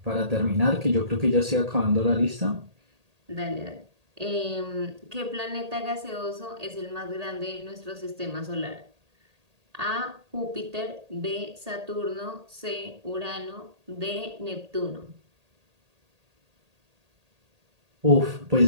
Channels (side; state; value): left; late; 1.8 ms